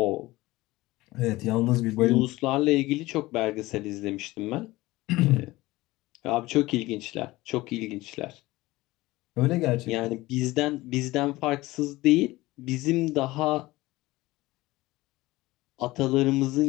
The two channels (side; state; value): right; quieter; 19.1 dB